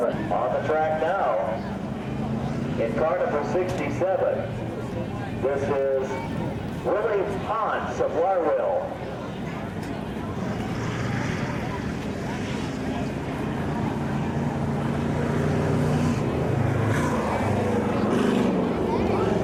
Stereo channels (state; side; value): identical; both; correlation 1.00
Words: On the track now. In car number 67, this is Willie Ponce of Warwill.